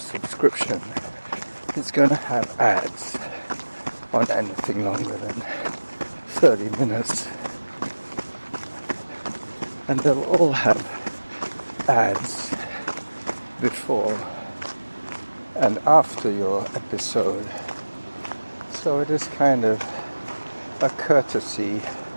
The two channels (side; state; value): both; inverted; correlation -1.00